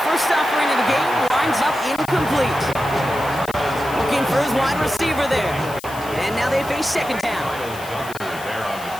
offering of the game winds up incomplete. Looking for his wide receiver there. And now they face second down.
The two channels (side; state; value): left; noise; hiss, 16 dB below the sound